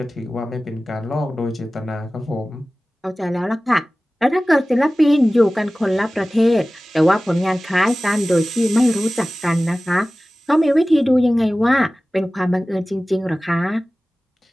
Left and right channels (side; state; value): both; normal; correlation 0.97